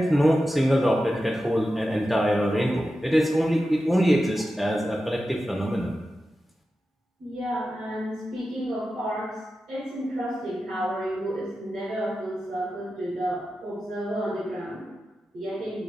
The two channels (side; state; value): both; normal; correlation 0.92